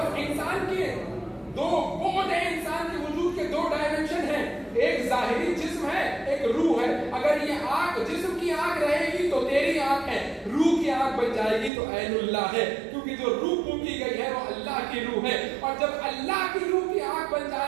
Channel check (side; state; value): left; drops out; at 11.7 s